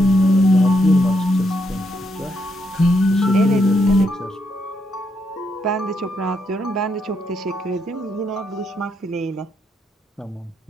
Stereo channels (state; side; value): normal; both; correlation 0.78